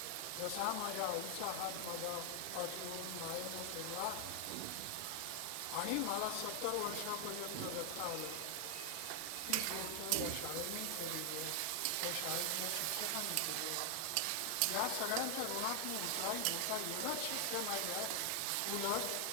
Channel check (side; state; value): both; different; correlation 0.00